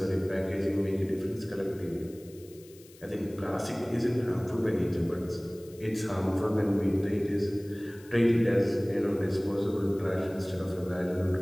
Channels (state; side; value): noise; left; hiss, 24 dB below the sound